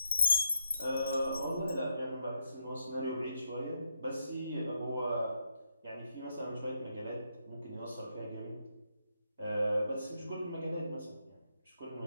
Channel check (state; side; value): inverted; both; correlation -0.79